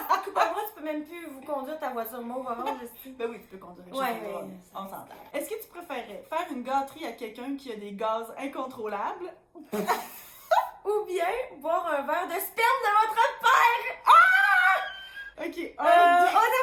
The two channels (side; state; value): both; identical; correlation 1.00